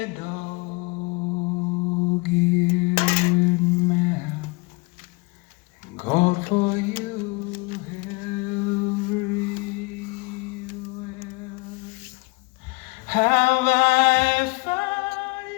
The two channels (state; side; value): quieter; right; 26.1 dB